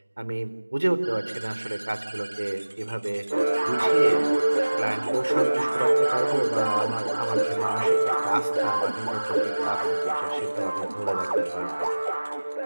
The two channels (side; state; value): both; inverted; correlation -1.00